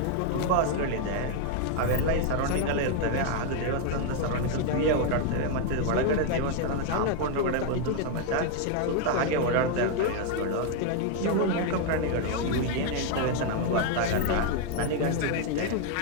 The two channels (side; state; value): both; different; correlation 0.01